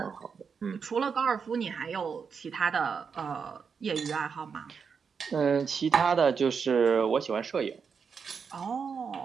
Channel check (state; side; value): quieter; left; 6.0 dB